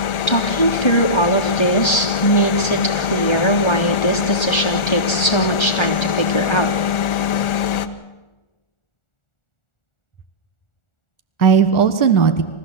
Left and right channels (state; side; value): late; right; 1.4 ms